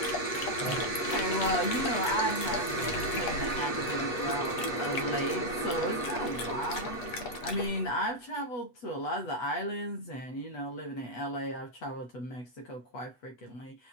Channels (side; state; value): right; late; 8.1 ms